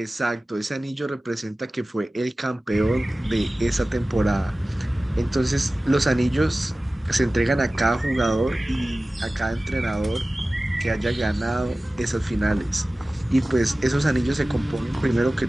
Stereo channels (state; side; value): normal; both; correlation 0.97